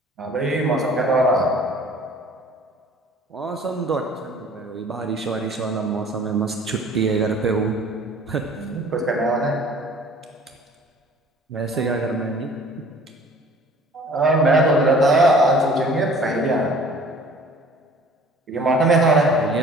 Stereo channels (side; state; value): both; normal; correlation 0.49